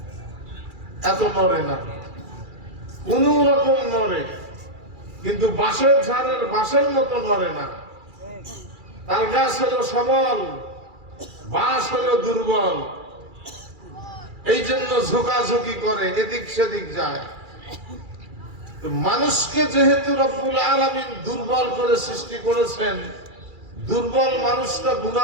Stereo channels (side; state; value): left; late; 2.3 ms